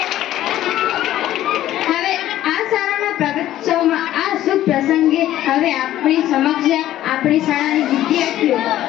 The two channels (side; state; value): right; quieter; 13.3 dB